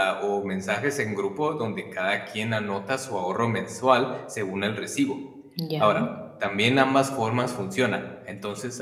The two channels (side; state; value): both; identical; correlation 1.00